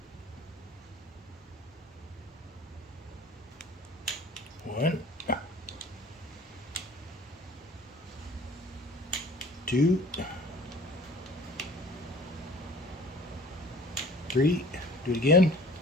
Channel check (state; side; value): normal; both; correlation 0.48